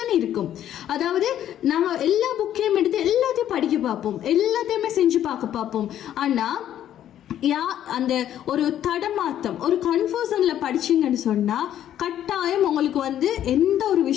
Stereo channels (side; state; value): right; quieter; 11.1 dB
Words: இருக்கும். அதாவது நாங்கள் எல்லா புக்கையும் எடுத்து எல்லாத்தையும் படிக்க பார்ப்போம், எல்லாத்தையுமே செஞ்சு பார்க்க பார்ப்போம். ஆனால் அந்த ஒரு தடமாத்தம், ஒரு கன்ஃபியூஷன்ல படிச்சீங்கன்னு சொன்னா கட்டாயம் உங்களுக்கு எந்த ஒரு